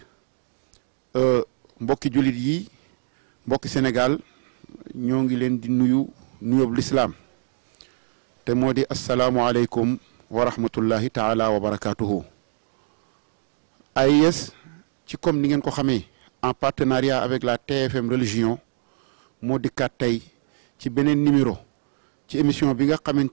mbokki jullit yi mbokki Sénégal ñoo ngi leen di nuyu nuyoob lislaam te moo di asalaamualeykum wa rahmatullahi taala wa barakaatuhu. AIS ci comme ni ngeen ko xamee en partenariat avec la TFM religion moo dikkaat tey ci beneen numéro ci émission bi nga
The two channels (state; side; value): silent; left; digital silence